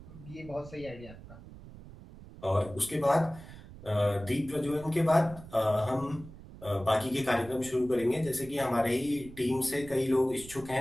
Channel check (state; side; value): noise; right; rumble, 17 dB below the sound